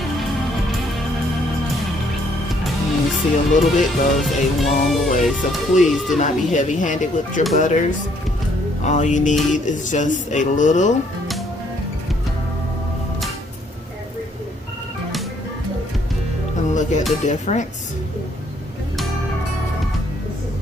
You see, a little bit goes a long way, so please do not be heavy-handed with your butters. All you need is just a little. And look at the difference.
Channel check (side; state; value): both; normal; correlation 0.66